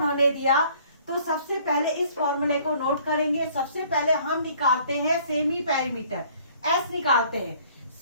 दिया, तो सबसे पहले इस फॉर्मूले को नोट करेंगे। सबसे पहले हम निकालते हैं सेमी पेरीमीटर, एस निकालते हैं।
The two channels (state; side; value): inverted; both; correlation -0.57